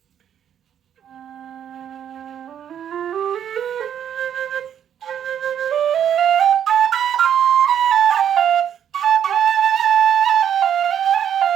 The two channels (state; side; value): quieter; left; 9.3 dB